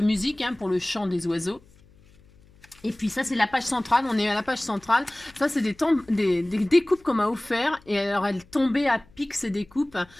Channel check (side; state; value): left; noise; hum, 28 dB below the sound